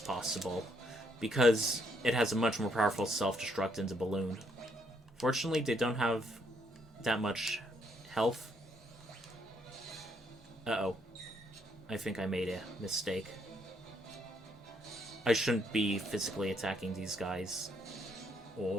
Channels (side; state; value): both; normal; correlation 0.72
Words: because it has a much more powerful self-destruct than the balloon. Fortunately, they don't have that much health. Uh-oh. I think I made a mistake. I shouldn't be physically attacking these guys.